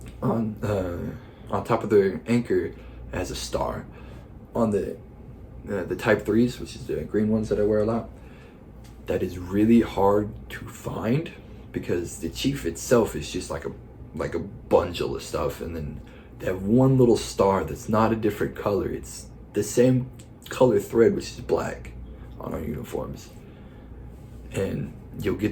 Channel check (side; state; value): both; identical; correlation 1.00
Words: on top of their anchor, it has a star. On the Type 3s, which is the green ones that I wear a lot, that is really hard to find, because the chief itself is just like a bundle of stuff, and then they have one little star that's not a different color. It's the same color thread, which is black, on our uniforms. And you'll